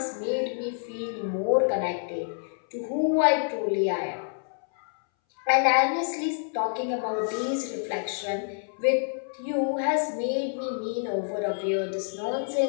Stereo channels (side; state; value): right; silent; 60 dB below the other